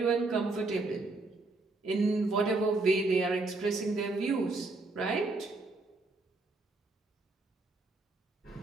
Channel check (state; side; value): quieter; left; 3.3 dB